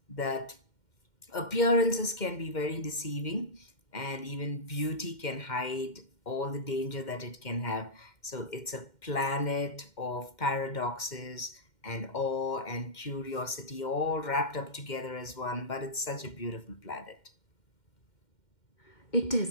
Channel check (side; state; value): right; late; 2.1 ms